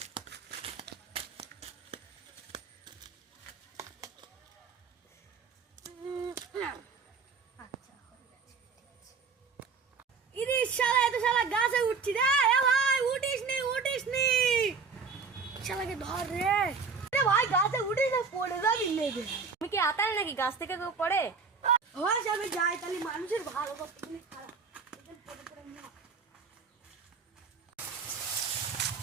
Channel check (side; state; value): left; quieter; 5.2 dB